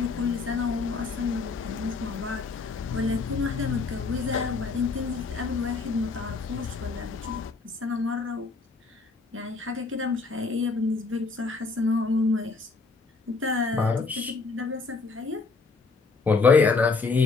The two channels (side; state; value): right; quieter; 4.2 dB